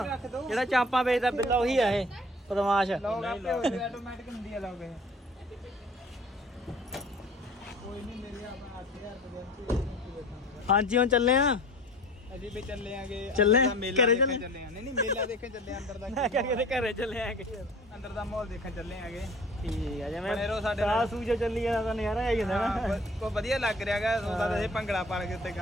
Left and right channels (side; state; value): both; normal; correlation 0.46